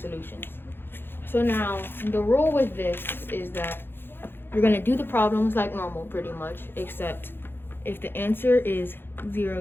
So now the rule with this is that you're going to do the problems like normal pretty much, except if the answer is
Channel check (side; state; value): right; late; 0.10 ms